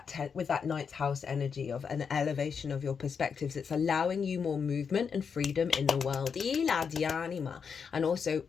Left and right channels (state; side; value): quieter; right; 6.3 dB